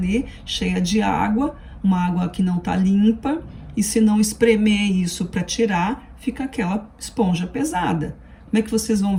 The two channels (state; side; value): identical; both; correlation 1.00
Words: cheia de água, uma água que não está limpa, e se não espremer isso para tirar, fica aquela esponja pesada. Como é que vocês vão